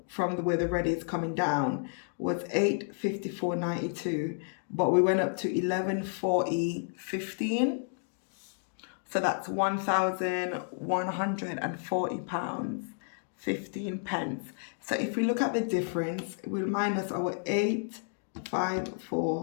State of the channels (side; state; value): right; silent; digital silence